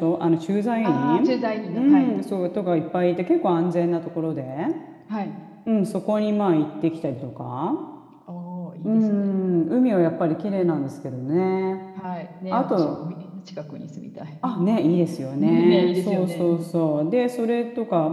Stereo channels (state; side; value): identical; both; correlation 1.00